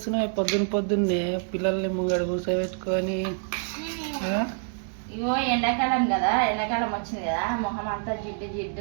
పొద్దున్నే పిల్లల్ని ముంగడు కూర్చోబెట్టుకొని? ఇగో ఎండాకాలం కదా, ఎండాకాలం వచ్చింది కదా, మొహం అంతా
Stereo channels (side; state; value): left; silent; digital silence